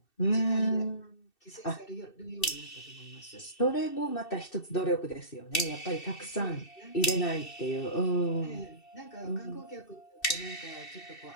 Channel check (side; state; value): right; late; 2.6 ms